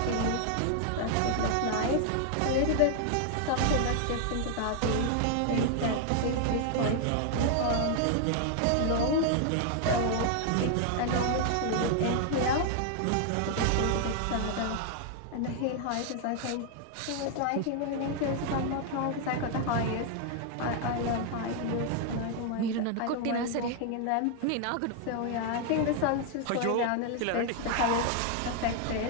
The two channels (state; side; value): different; both; correlation 0.00